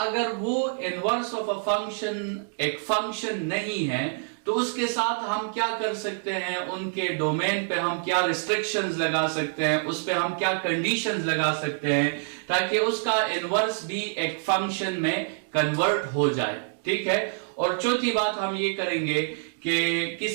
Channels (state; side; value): silent; left; digital silence